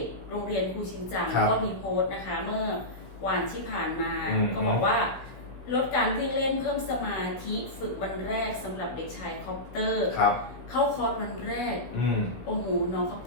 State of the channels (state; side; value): late; right; 16 ms